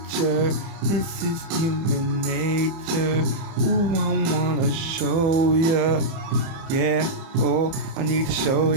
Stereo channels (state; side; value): late; left; 30 ms